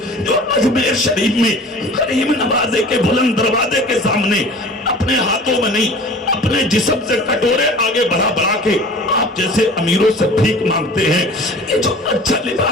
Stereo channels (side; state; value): both; normal; correlation 0.43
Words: جو اجمیر شریف میں غریب نوازے کے بلند دروازے کے سامنے اپنے ہاتھوں میں نہیں, اپنے جسم سے کٹورے آگے بڑھا کے آپ جیسے امیروں سے بھیک مانگتے ہیں. یہ جو اچھا